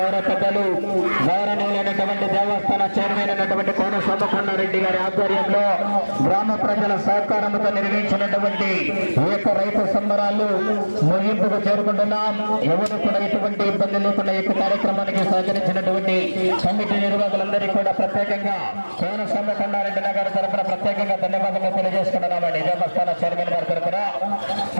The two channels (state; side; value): inverted; both; correlation -1.00